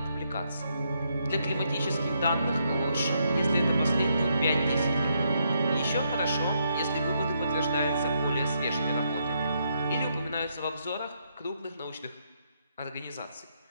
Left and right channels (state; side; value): inverted; both; correlation -0.76